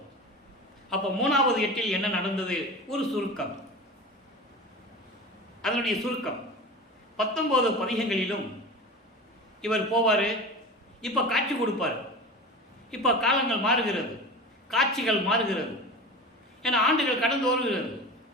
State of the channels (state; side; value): normal; both; correlation 0.32